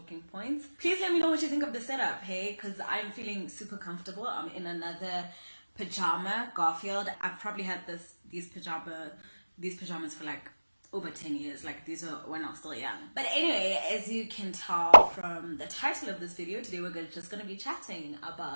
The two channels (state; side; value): inverted; both; correlation -1.00